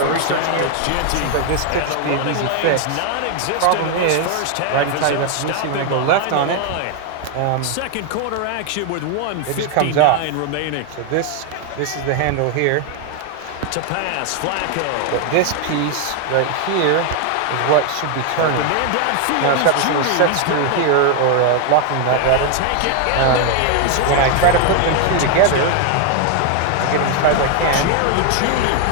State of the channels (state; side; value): different; both; correlation 0.00